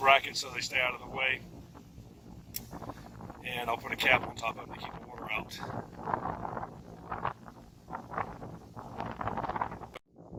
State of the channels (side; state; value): both; identical; correlation 1.00